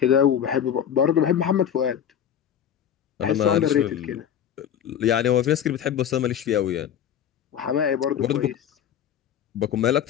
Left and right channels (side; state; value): right; quieter; 9.2 dB